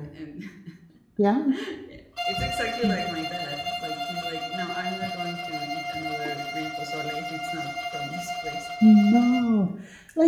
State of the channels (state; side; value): identical; both; correlation 1.00